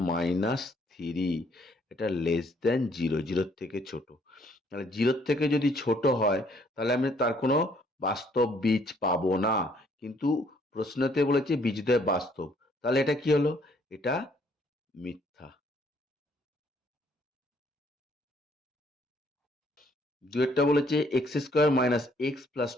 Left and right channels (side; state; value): both; normal; correlation 0.65